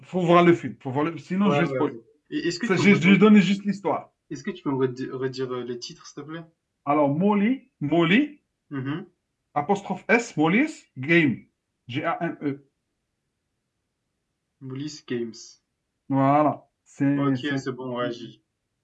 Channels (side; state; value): both; identical; correlation 1.00